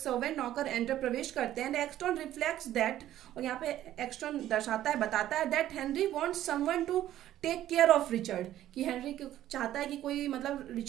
नौकर एंटर प्रवेश करते हैं। एंड एक्सटॉन रिफ्लेक्ट्स दैट, और यहाँ पे एक्सटॉन दर्शाता है बताता है that Henry wants someone to take care of Richard, कि हेनरी चाहता है कि कोई मतलब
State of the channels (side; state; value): left; quieter; 12.8 dB